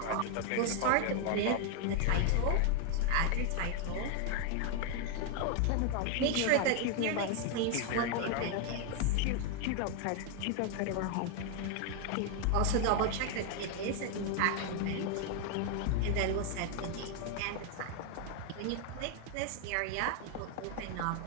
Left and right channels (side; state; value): both; different; correlation 0.01